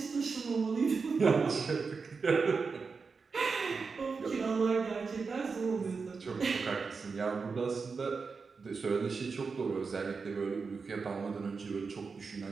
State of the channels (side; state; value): left; quieter; 4.9 dB